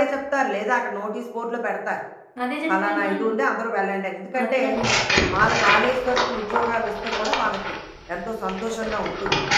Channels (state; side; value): identical; both; correlation 1.00